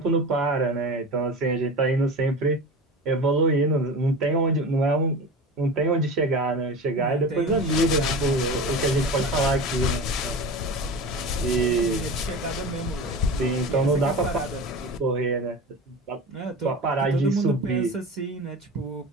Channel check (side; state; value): both; normal; correlation 0.31